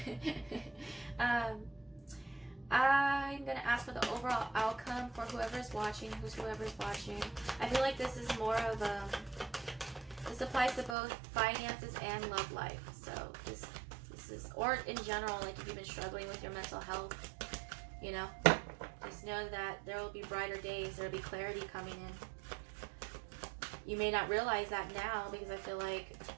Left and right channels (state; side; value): drops out; left; at 11.0 s